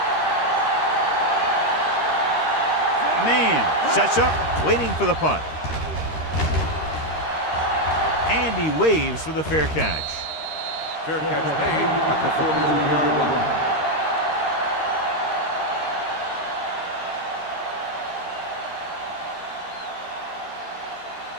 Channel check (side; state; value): right; late; 13 ms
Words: Man sets up, waiting for the punt. And he waves for the fair catch. Fair catch made at the 43-yard line.